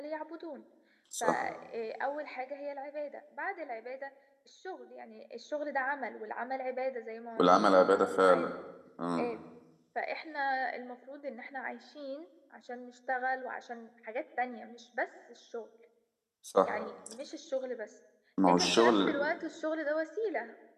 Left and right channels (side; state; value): both; identical; correlation 1.00